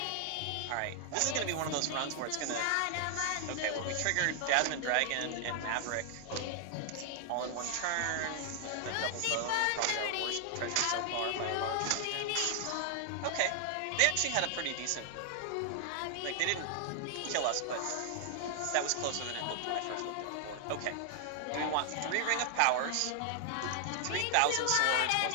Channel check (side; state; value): both; different; correlation 0.00